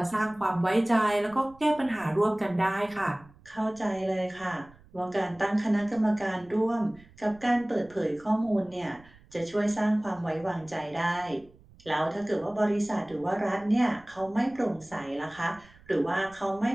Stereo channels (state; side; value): noise; right; rumble, 25 dB below the sound